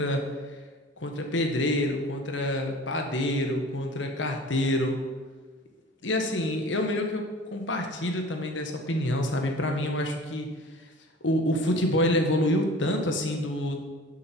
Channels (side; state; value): both; normal; correlation 0.42